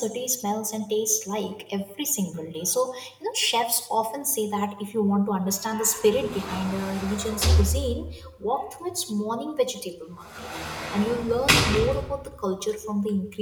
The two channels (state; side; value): identical; both; correlation 1.00